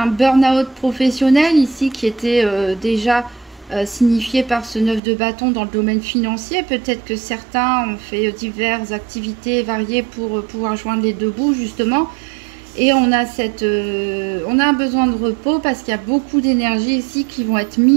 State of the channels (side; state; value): left; drops out; at 5.0 s